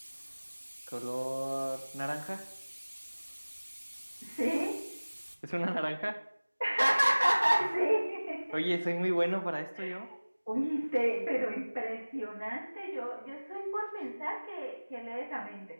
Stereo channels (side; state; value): both; inverted; correlation -1.00